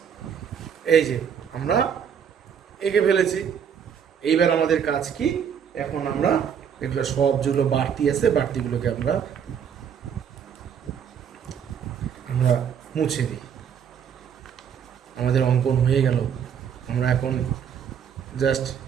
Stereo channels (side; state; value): left; quieter; 7.9 dB